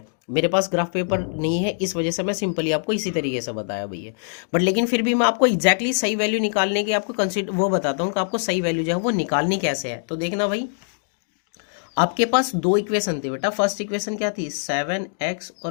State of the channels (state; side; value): silent; right; digital silence